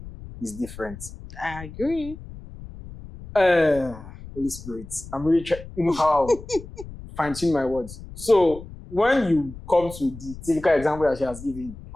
is different. I agree. Holy Spirit, I'm really trying, how fine tune my words. So when you come to the typical example that she has given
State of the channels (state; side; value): noise; left; rumble, 15 dB below the sound